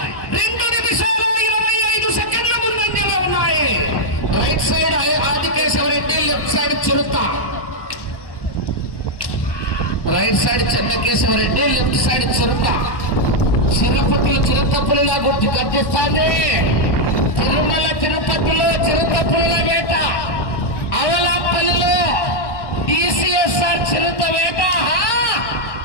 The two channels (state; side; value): late; right; 1.1 ms